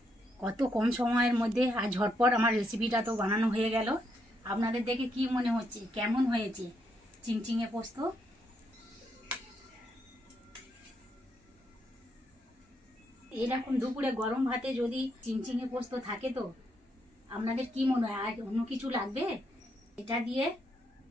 কত কম সময়ের মধ্যে আর ঝটপট আমার রেসিপিটা তো বানানো হয়ে গেল। আপনাদের দেখে কি মনে হচ্ছে, কেমন হয়েছে চিংচিঙে পোস্ত? এরকম দুপুরে গরম ভাতে যদি চিংচিঙে পোস্ত থাকে তো আপনাদের কি মনে হয় আর অন্য কিছু লাগবে? এটা দিয়ে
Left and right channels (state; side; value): normal; both; correlation 0.77